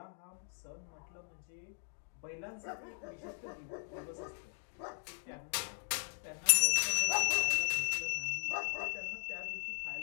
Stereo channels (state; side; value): silent; right; 52 dB below the other